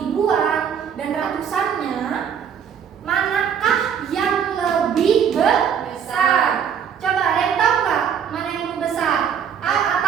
dan ratusannya, manakah yang lebih besar? Coba ada yang tahu nggak mana yang lebih besar? A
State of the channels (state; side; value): quieter; left; 7.9 dB